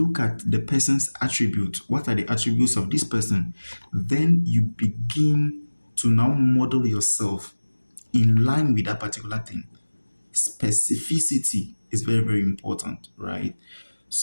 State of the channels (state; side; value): inverted; both; correlation -1.00